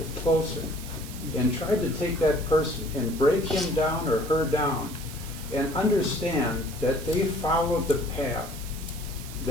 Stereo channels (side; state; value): right; noise; hiss, 14 dB below the sound